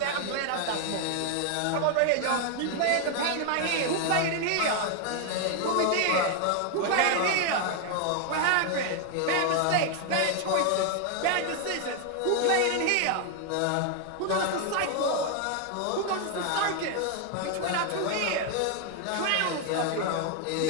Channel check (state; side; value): different; both; correlation 0.00